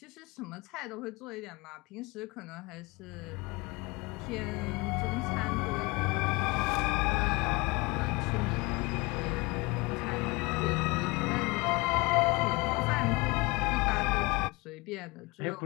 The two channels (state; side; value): quieter; right; 25.2 dB